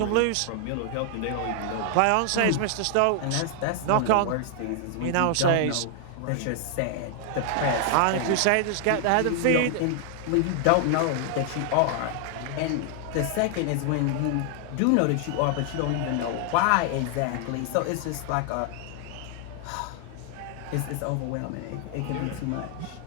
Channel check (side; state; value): both; different; correlation 0.00